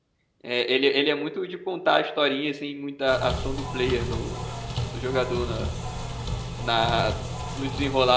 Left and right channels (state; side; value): identical; both; correlation 1.00